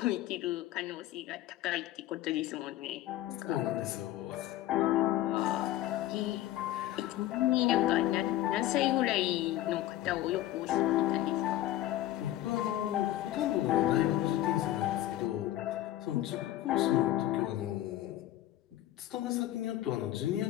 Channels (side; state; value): right; quieter; 14.1 dB